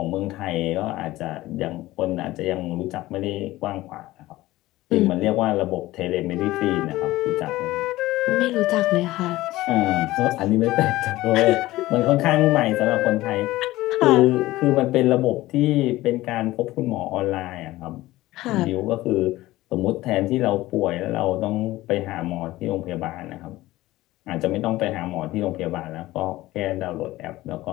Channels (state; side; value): quieter; right; 17.3 dB